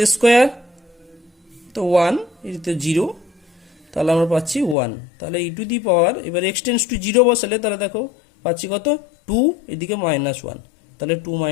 square, তো 1, এটিতে 0, তাহলে আমরা পাচ্ছি 1। তাহলে ই টু দি পাওয়ার এবার এক্সটেন্ডস টু 0 বসালে তাহলে দেখো পাচ্ছি কত 2, এদিকে -1, তাহলে 2 -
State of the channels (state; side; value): drops out; right; at 4.8 s